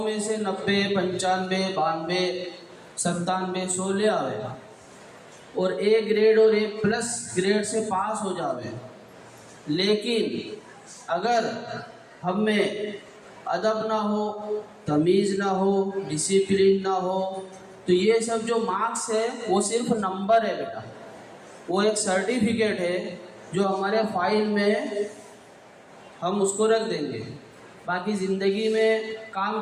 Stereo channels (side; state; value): both; identical; correlation 1.00